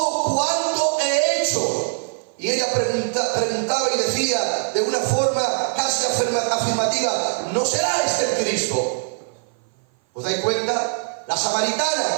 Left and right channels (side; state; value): left; silent; 56 dB below the other